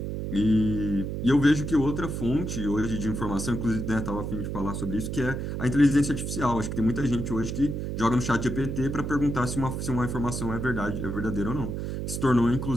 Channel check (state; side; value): noise; right; hum, 4 dB below the sound